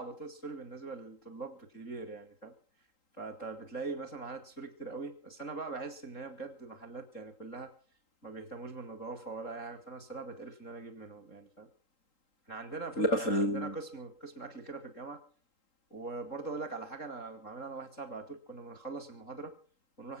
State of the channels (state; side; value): late; right; 3.8 ms